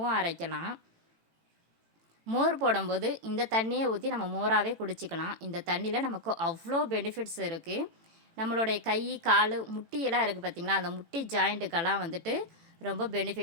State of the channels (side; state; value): left; late; 18 ms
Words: அரைக்கலாம். மோர் போடும்போது இந்த தண்ணியை ஊற்றி நம்ம மோராகவே குடிச்சிக்கலாம். இந்த தண்ணியில் நமக்கு அவ்வளோ பெனிஃபிட்ஸ் இருக்குது. நம்மளுடைய கை, கால், முட்டியெல்லாம் இருக்குது பார்த்திங்களா, அந்த முட்டி ஜாயிண்ட்டுக்கெல்லாம் வந்துட்டு ரொம்ப